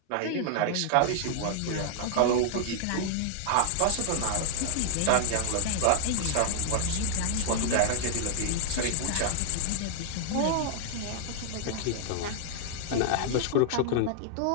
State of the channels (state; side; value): different; both; correlation 0.00